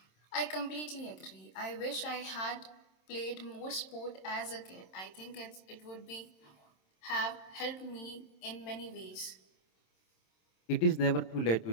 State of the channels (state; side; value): late; right; 27 ms